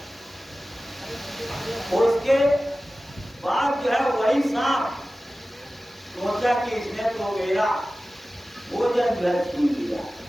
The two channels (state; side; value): normal; both; correlation 0.96